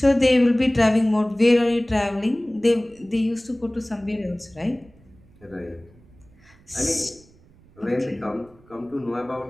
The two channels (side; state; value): right; noise; rumble, 28 dB below the sound